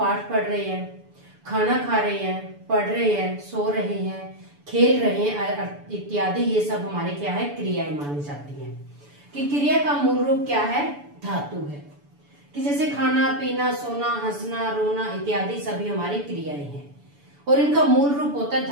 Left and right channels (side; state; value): left; late; 6.9 ms